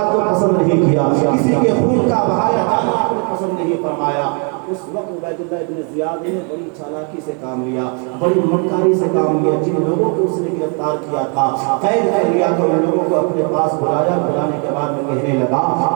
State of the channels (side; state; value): left; quieter; 37.9 dB